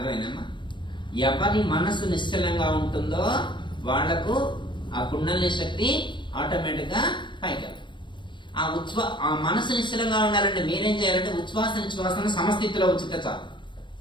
ఎవరి మనసు నిశ్చలంగా ఉంటుందో వాళ్లకు ఆ కుండలిని శక్తి ఆటోమేటిక్ గా పైకి వెళ్తుంది. ఆ మనసు నిశ్చలంగా ఉండాలంటే మీరేం చేయాలంటే ఉచ్ఛ్వాస నిశ్వాసాన్ని సమస్థితిలో ఉంచితే చాలు.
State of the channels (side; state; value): right; late; 0.23 ms